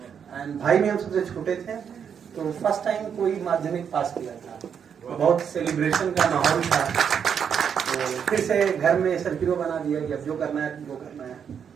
एंड भाई में हम सबसे छोटे थे, तो फर्स्ट टाइम कोई माध्यमिक पास किया था, तो बहुत सेलिब्रेशन का माहौल था। तो फिर से घर में सर्किलो बना दिया कि अब जो करना है वो करना है।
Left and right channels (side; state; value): left; quieter; 7.5 dB